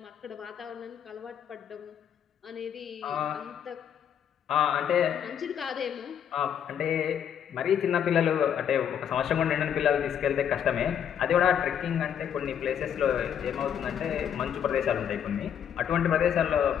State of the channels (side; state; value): right; quieter; 8.8 dB